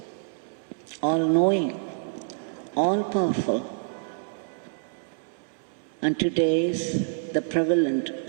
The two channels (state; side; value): silent; left; 59 dB below the other